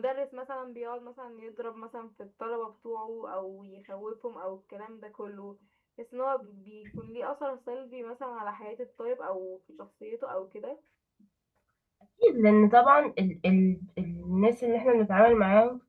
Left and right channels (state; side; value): identical; both; correlation 1.00